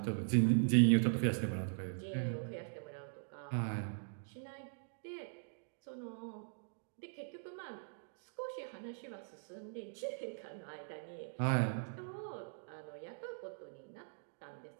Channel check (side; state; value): left; silent; digital silence